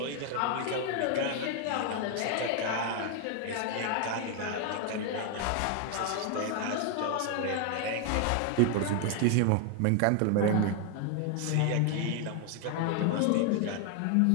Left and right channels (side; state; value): both; different; correlation 0.00